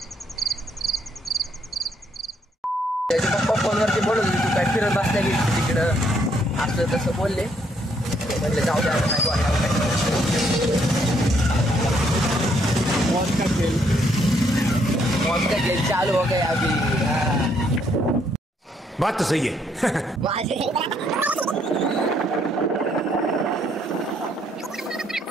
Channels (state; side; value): normal; both; correlation 0.71